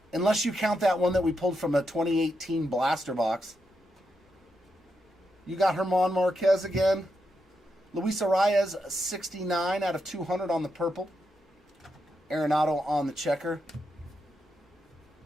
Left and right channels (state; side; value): normal; both; correlation 0.83